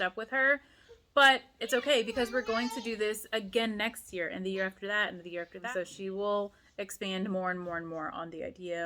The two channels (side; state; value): both; identical; correlation 1.00